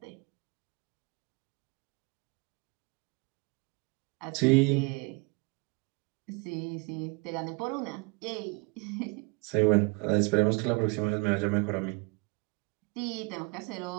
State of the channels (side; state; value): left; quieter; 29.1 dB